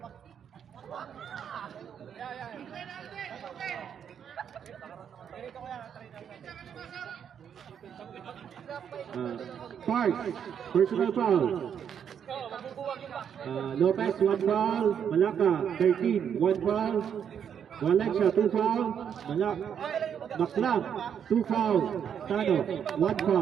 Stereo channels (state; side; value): quieter; left; 8.2 dB